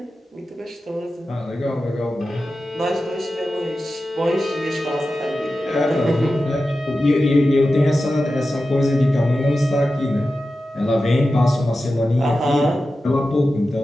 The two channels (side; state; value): both; normal; correlation 0.93